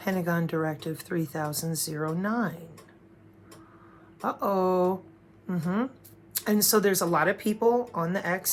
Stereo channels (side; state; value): both; identical; correlation 1.00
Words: Directive 3009. Uh-oh. And so there's a lot of people on the